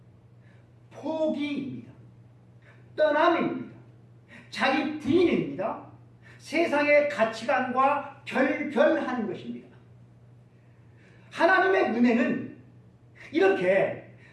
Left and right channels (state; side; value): identical; both; correlation 1.00